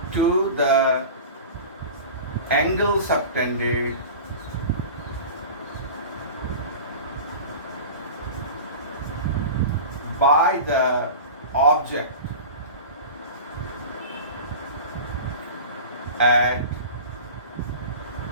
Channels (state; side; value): inverted; both; correlation -0.34